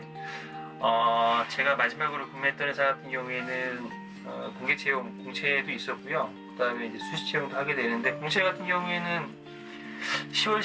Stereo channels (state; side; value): identical; both; correlation 1.00